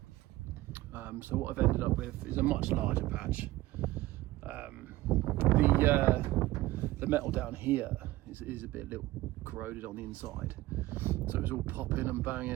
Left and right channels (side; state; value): left; quieter; 17.5 dB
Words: So what I've ended up with is a much larger patch. The metal down here is a little corroded on the inside, so it was all popping and